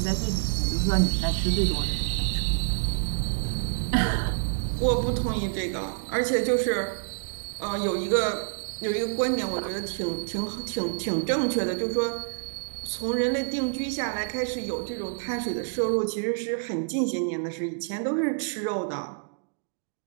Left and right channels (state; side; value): silent; left; digital silence